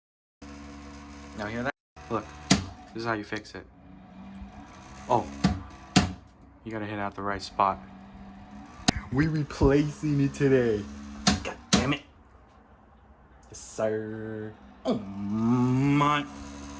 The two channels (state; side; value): identical; both; correlation 1.00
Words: Now hear that? Look, this is how you fix it. Oh, you gotta hit out the right spot. We replacing it today. God damn it. Yes, sir. Oh my.